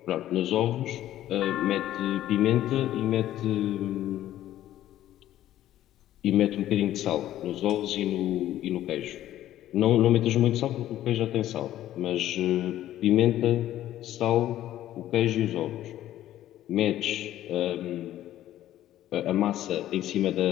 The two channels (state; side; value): quieter; right; 13.1 dB